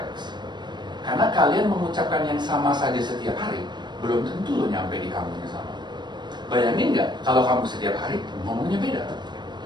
Karena kalian mengucapkan yang sama saja setiap hari, belum tentu lo nyampe di kamu yang sama. Bayangin nggak kalau kamu setiap hari ngomongnya beda?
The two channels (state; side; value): late; left; 0.21 ms